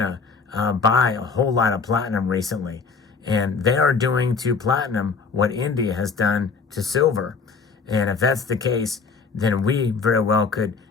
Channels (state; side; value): quieter; right; 5.0 dB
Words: buy a whole lot of platinum recently, and they are doing to platinum what India has done to silver. And if that's the case, then we very well could